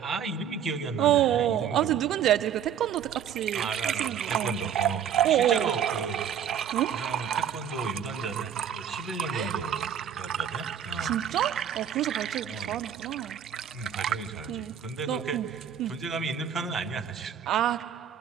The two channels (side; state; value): left; quieter; 8.8 dB